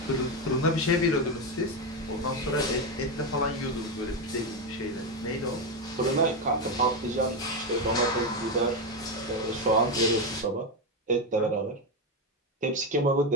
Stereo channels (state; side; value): normal; both; correlation 0.10